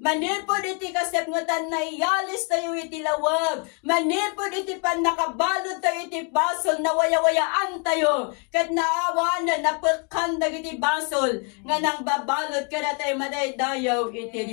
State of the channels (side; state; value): right; quieter; 36.8 dB